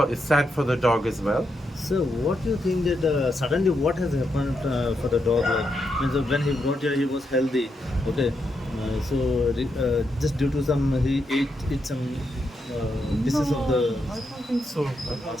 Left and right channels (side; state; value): both; normal; correlation 0.82